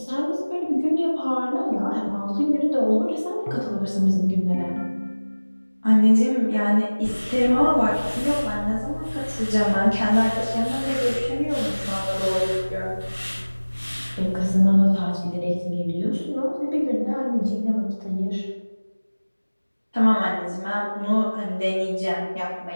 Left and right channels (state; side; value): inverted; both; correlation -1.00